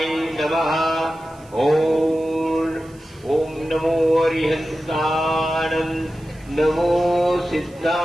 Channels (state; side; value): noise; right; hiss, 28 dB below the sound